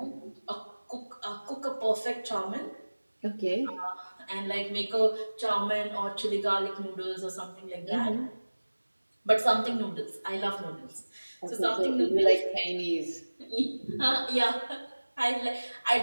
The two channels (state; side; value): inverted; both; correlation -1.00